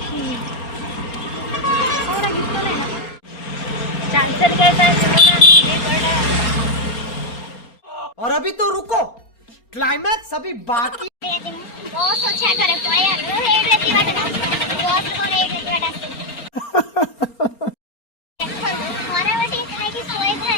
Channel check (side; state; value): right; late; 4.3 ms